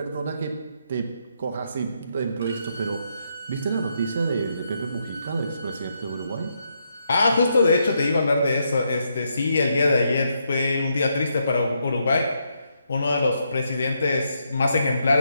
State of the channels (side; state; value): both; inverted; correlation -0.79